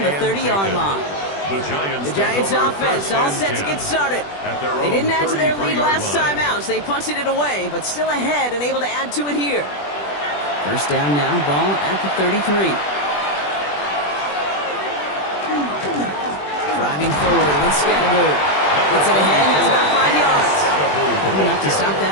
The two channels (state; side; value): late; right; 21 ms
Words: the 30-yard line. The Giants offense all set to get started. They didn't add to their lead last time out, so they punted it away, but still ahead and able to add to it here. First down now, ball at the 33. Driving forward with Scatterboo. Gets it ahead, has about 5 yards. Good enough to stop